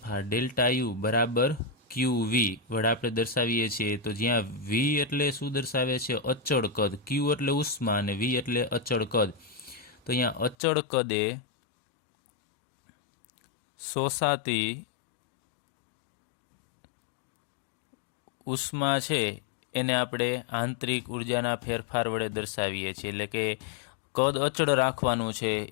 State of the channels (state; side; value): drops out; right; at 10.6 s